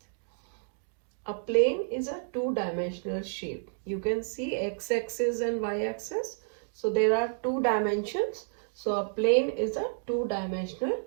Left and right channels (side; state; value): left; silent; digital silence